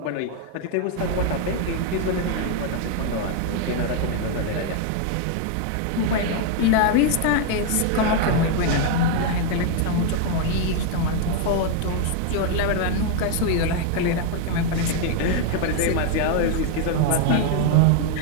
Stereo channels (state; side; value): different; both; correlation 0.00